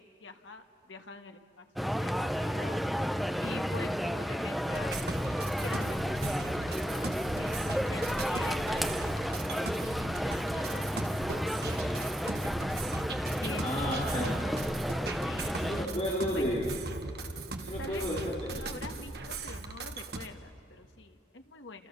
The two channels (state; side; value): normal; both; correlation 0.82